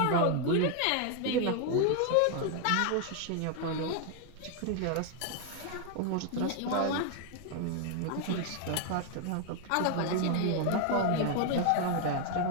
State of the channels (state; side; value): different; both; correlation 0.00